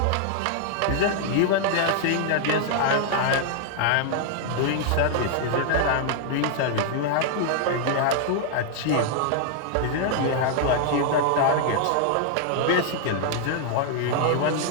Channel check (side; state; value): both; different; correlation 0.00